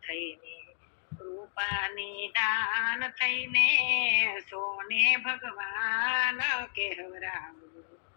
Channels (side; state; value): right; silent; digital silence